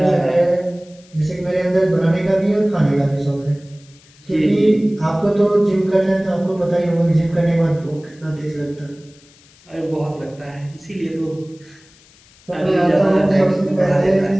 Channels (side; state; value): left; noise; hiss, 28 dB below the sound